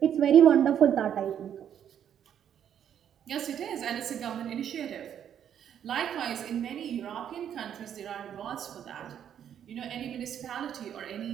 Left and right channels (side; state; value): left; quieter; 9.4 dB